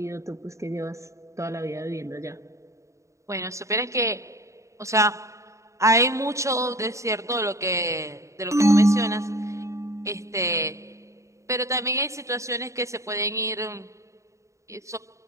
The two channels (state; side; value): late; left; 0.15 ms